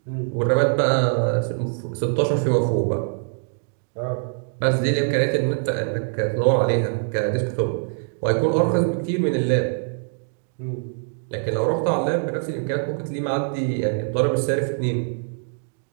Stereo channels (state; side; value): silent; left; 63 dB below the other